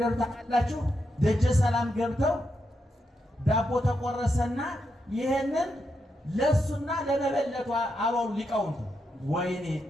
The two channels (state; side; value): normal; both; correlation 0.83